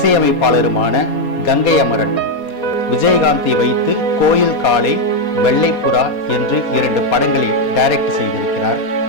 கங்கை அமரன் விஜயகாந்தை வைத்து கோயில் காளை, வெள்ளைப்புறா என்று 2 படங்களை டைரக்ட் செய்திருக்கிறார்.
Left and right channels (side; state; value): right; late; 4.2 ms